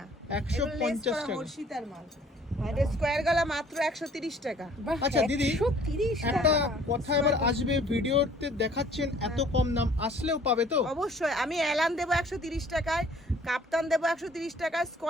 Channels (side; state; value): both; normal; correlation 0.55